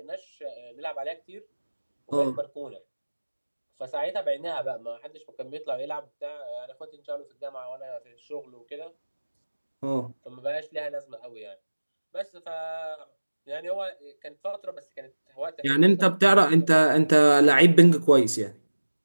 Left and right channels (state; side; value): inverted; both; correlation -1.00